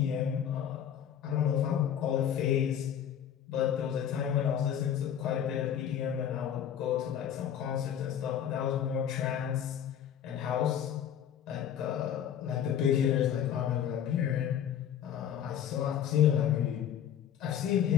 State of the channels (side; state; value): right; quieter; 9.5 dB